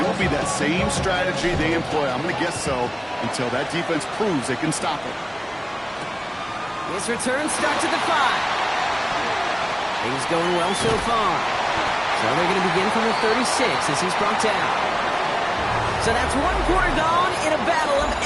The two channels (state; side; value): identical; both; correlation 1.00